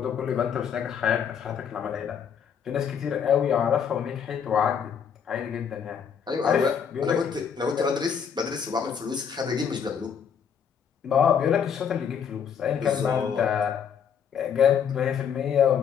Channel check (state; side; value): quieter; right; 7.5 dB